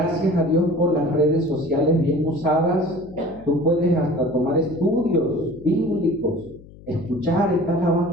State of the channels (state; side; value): noise; left; hum, 20 dB below the sound